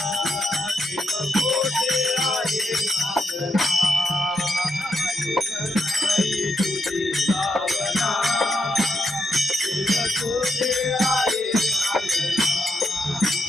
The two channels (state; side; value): normal; both; correlation 0.82